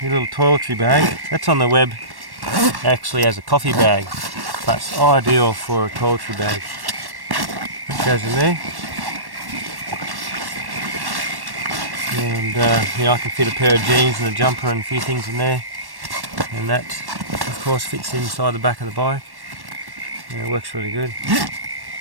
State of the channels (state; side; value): late; left; 1.1 ms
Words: your little toiletry bag. That's on the web actually as a coffee bag, but it's ideal for a toiletry bag. That goes in there. And you know, I can fit a pair of jeans and a jumper and a few things in there. And that, of course, fits inside the back of the bike. And it works really good.